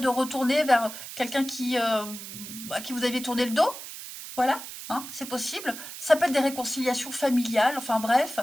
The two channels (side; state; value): right; noise; hiss, 11 dB below the sound